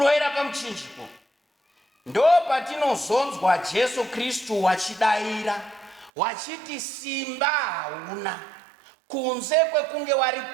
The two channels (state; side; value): drops out; left; at 6.1 s